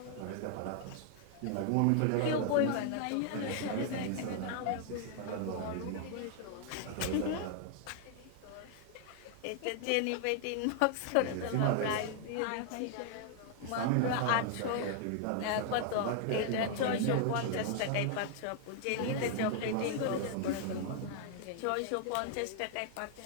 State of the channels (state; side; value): different; both; correlation 0.00